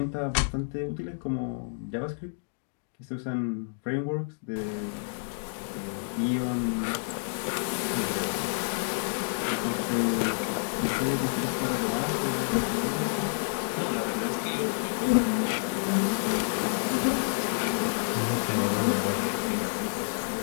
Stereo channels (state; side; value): silent; right; digital silence